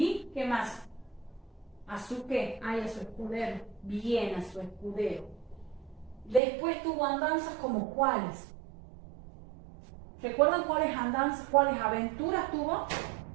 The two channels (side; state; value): left; drops out; at 6.4 s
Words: qué más? ¿A su qué? Ah, y a su escudero. Bien, a su escudero. Después tuvo andanzas como cuáles. ¿Recuerdan cuáles andanzas, cuáles aventuras tuvo?